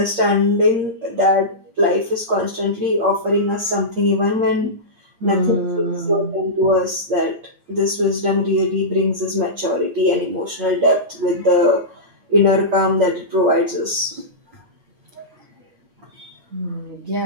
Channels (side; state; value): left; late; 8.7 ms